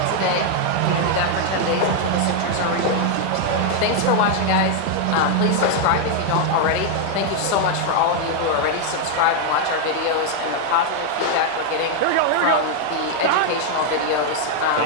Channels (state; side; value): different; both; correlation 0.00